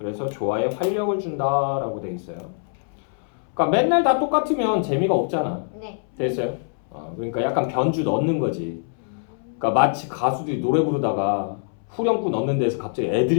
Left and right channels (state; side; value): silent; right; 63 dB below the other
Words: 조화에 활력을 준다라고 돼 있어요. 그러니까 맨날 다 똑같으면 재미가 없잖아. 네. 됐어요? 그러니까 약간 변주 넣는 거지. 그러니까 마치 가수들이 노래 부르다가 후렴구 넣는 데서 갑자기